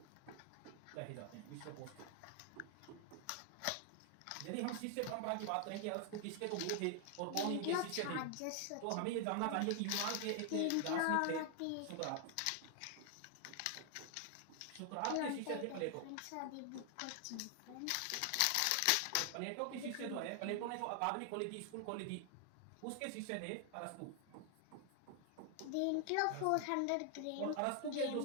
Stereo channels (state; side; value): different; both; correlation 0.00